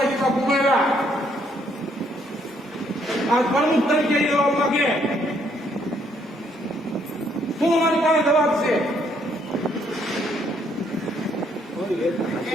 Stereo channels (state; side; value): normal; both; correlation 0.69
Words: ઉમેર્યા. આ પ્રમુખ તરીકે લેવા માંગે શું અમારી પાસે જવાબ છે?